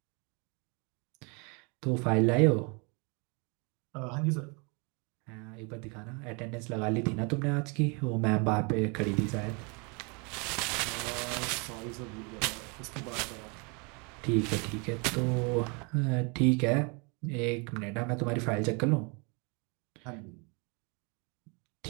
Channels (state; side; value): quieter; left; 32.5 dB